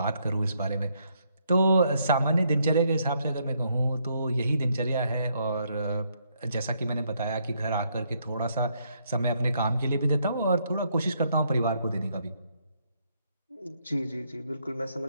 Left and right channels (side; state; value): both; inverted; correlation -0.73